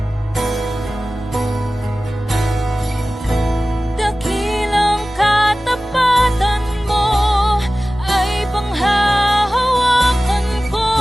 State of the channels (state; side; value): normal; both; correlation 0.97